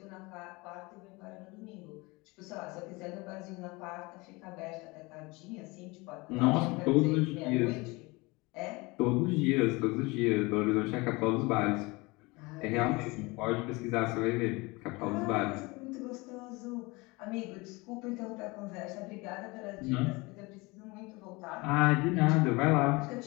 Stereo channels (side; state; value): right; quieter; 24.7 dB